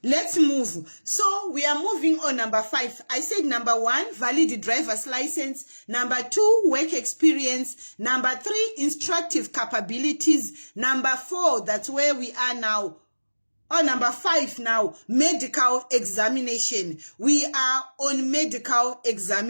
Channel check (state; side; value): inverted; both; correlation -1.00